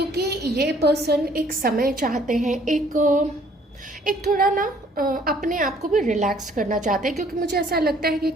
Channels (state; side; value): normal; both; correlation 0.60